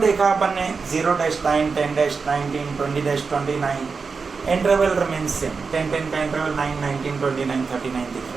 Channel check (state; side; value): quieter; left; 4.9 dB